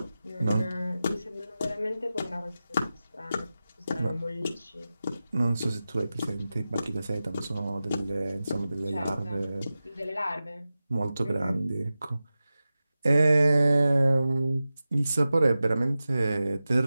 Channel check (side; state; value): both; inverted; correlation -0.94